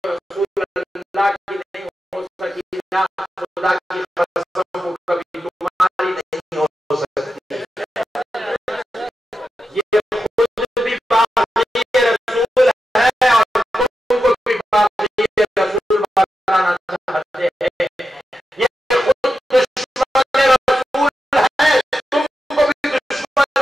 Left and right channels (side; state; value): both; normal; correlation 0.89